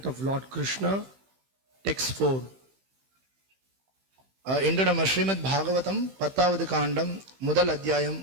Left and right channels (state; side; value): late; left; 15 ms